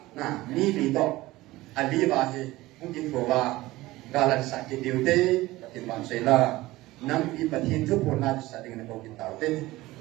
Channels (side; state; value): left; quieter; 18.4 dB